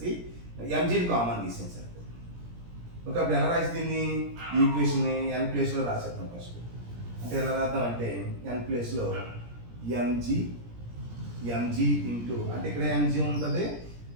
mgని కామన్ తీసేయండి సరిపోతుంది. ఓకే, అప్పుడు ఎలా రాసి దీన్ని ఈక్వేషన్ని n ప్లేస్లో రాసేద్దాం ఫస్ట్. అంటే ఎలా రాద్దాం అంటే n ప్లేస్లో mg ఇంటూ అంటే ఇక్కడ mg ఉంటుంది,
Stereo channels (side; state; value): left; late; 17 ms